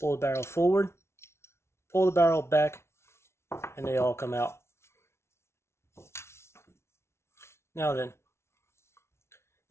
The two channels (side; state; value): right; late; 0.13 ms